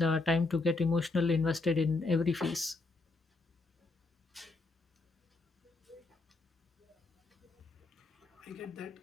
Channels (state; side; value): quieter; right; 3.4 dB